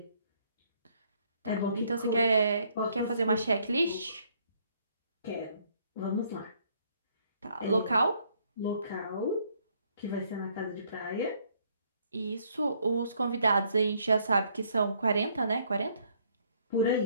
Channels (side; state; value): both; inverted; correlation -0.67